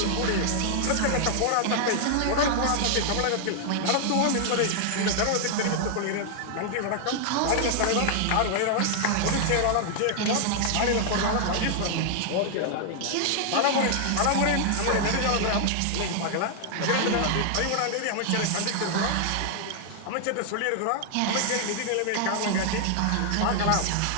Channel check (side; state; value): both; different; correlation -0.01